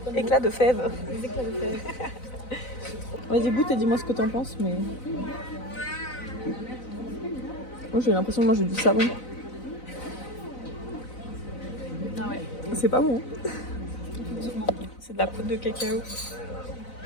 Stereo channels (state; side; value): late; right; 4.0 ms